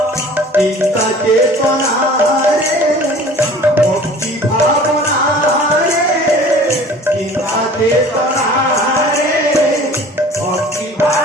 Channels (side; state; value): both; normal; correlation 0.46